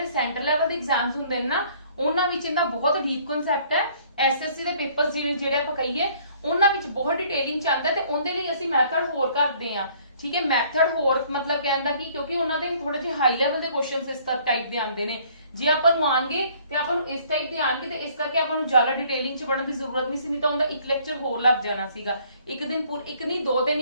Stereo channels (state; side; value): inverted; both; correlation -0.59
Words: ਸੈਂਟਰ ਲੈਵਲ ਦੇ ਐਗਜ਼ਾਮਸ ਹੁੰਦੇ ਨੇ ਨਾ ਉਹਨਾਂ ਵਿੱਚ ਇਹਦਾ ਬਹੁਤ ਡੀਪ ਕਨਸੈਪਟ ਹੈ। ਐਸਐਸਸੀ ਦੇ ਪੇਪਰਸ ਜਿਹੜੇ ਆਪਾਂ ਕਹੀਏ ਉਹਨਾਂ ਵਿੱਚ ਬਹੁਤ ਡਿਟੇਲਿੰਗ ਚ ਆਉਂਦਾ ਤੇ ਉਹਦੇ ਲਈ ਅਸੀਂ ਮੈਥਡ ਹੋਰ ਕਰਦੇ ਹਾਂ। ठीक है मैथड होर मतलब कहना कि क्योंकि उन्होंने थोड़े जे हाई लेवल के क्वेश्चंस इस टाइप के आते हैं जे अपन आएंगे तो अपन इस टाइप के आएंगे तो इस करके अपन ज्यादा डिटेलिंग च बढ़ने की जरूरत नहीं सी। नहीं तो उनका एक लेक्चर होर लग जाना सीगा। एक दिन एक नहीं 2 दिन